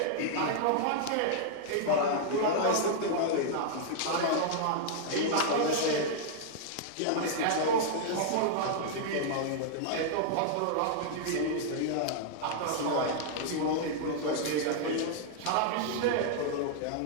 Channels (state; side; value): different; both; correlation -0.01